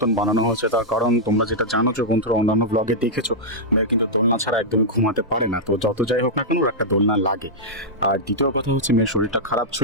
বানানো হয়েছে। তার কারণ তোমরা যেটা জানো যে বন্ধুরা অন্যান্য ব্লগে দেখেছো, মেয়ে কিন্তু দোলনা ছাড়া একদমই ঘুমাতে পারে না। তো যত যাই হোক না কেন, ওর একটা দোলনা লাগে। আর দ্বিতীয় কথা হচ্ছে মেয়ের শরীরটা খারাপ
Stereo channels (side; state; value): both; normal; correlation -0.08